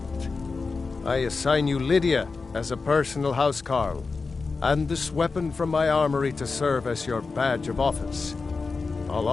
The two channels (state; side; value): quieter; right; 4.3 dB